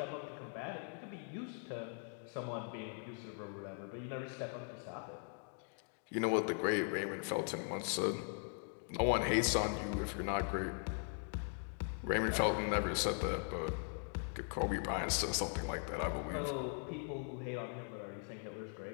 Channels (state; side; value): silent; right; 51 dB below the other